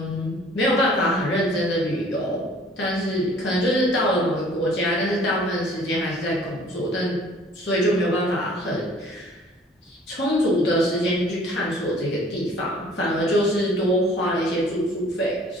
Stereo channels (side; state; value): both; normal; correlation 0.53